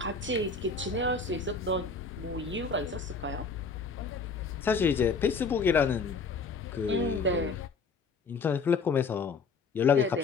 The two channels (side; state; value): right; quieter; 4.5 dB